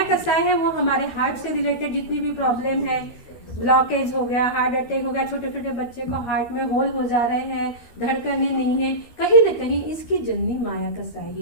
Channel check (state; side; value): late; right; 13 ms